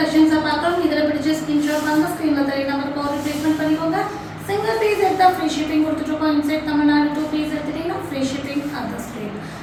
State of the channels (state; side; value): identical; both; correlation 1.00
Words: பார்க்கறோம். இதல பிடிச்ச ஸ்கிரீன்ஷாட் வாங்க, ஸ்கிரீன்ல தெரிய நம்பருக்கு ஆர்டர் ப்ளேஸ்மென்ட் பண்ணிக்கோங்க. சிங்கிள் பீஸ் எடுத்தா ஃப்ரீ ஷிப்பிங் கொடுத்துட்டோம். இன்சைட் தமிழ்நாடு 2 பீஸ் எடுத்தீங்கன்னா ஃப்ரீ ஷிப்பிங் அதர் ஸ்டேட்.